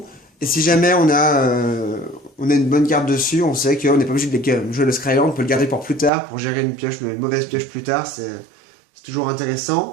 et si jamais on a une bonne carte dessus, on sait qu'on n'est pas obligé de jouer le Scryland, on peut le garder pour plus tard, pour gérer une mauvaise pioche plus tard, c'est toujours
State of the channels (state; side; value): drops out; left; at 6.1 s